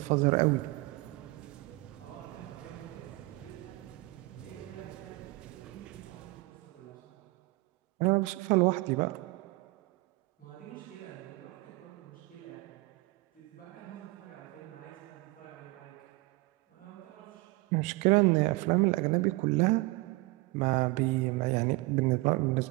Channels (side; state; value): left; quieter; 22.6 dB